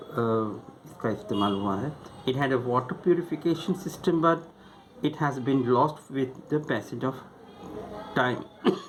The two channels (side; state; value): both; identical; correlation 1.00